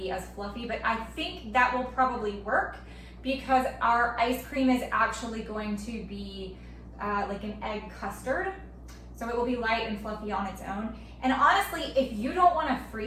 as fluffy, but I think that will probably work because our ice cream is actually going to be like an egg custard. So it will be light and fluffy on its own. And honestly, if you don't want to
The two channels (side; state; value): both; identical; correlation 1.00